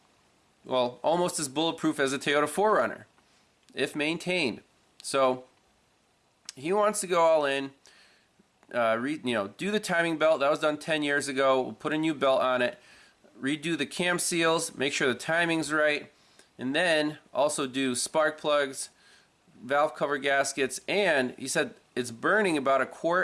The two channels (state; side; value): identical; both; correlation 1.00